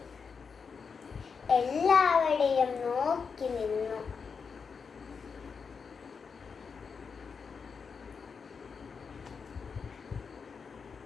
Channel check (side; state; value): right; quieter; 5.7 dB